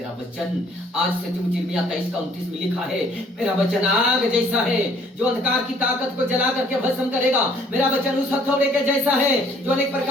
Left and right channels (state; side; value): normal; both; correlation 0.60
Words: वचन आज सचमुच यिर्मयाह 23 का 29 में लिखा है, मेरा वचन आग जैसा है जो अंधकार की ताकत को जला करके भस्म करेगा। मेरा वचन उस हथौड़े के जैसा है जो अनेक